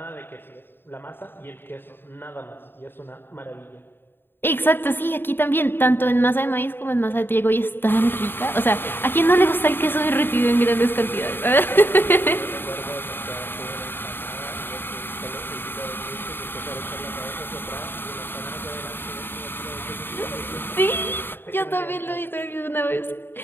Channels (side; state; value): right; late; 0.10 ms